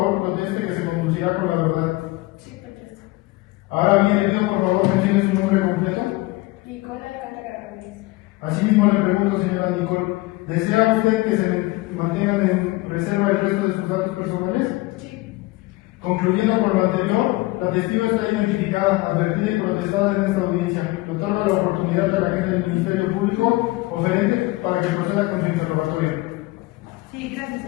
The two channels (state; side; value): quieter; right; 20.8 dB